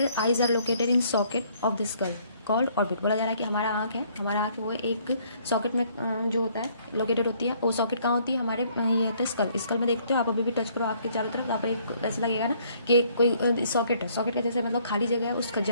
eyes are located in socket of the skull. Called orbit. बोला जा रहा है कि हमारा आँख है, हमारा आँख वो एक सॉकेट में जो होता है लोकेटेड होती है। वो सॉकेट कहाँ होती है? हमारे ये होता है स्कल। स्कल में देखते हो आप, अभी भी टच करो आपके चारों तरफ, आप ऐसा लगेगा ना कि कोई सॉकेट है, सॉकेट का जैसे मतलब खाली जगह है, उस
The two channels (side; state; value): both; inverted; correlation -0.64